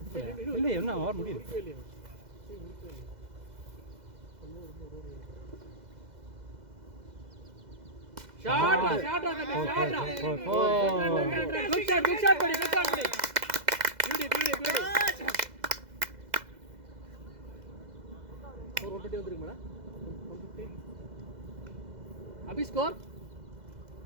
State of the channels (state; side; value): late; left; 2.0 ms